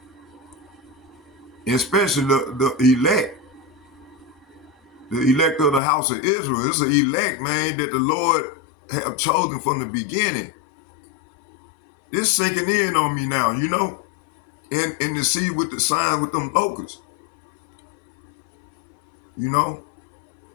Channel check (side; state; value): right; drops out; at 5.8 s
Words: and especially the elect. The elect of the house of Israel. It's an elect, man, that the Lord have chosen from the beginning. This sinking in on me now, and to see with the sign with them locusts,